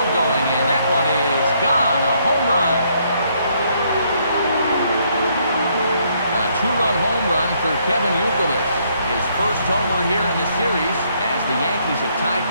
going, and that one is gone. A home run. A 2-run home run for Kevin Youkilis. His first homer here in the series as the Yankees have tied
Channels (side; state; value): both; inverted; correlation -0.70